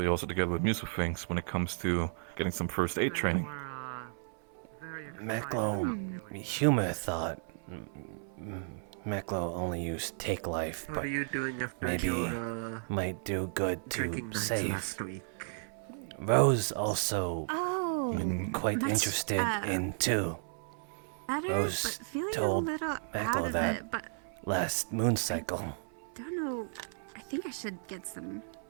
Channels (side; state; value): left; silent; 55 dB below the other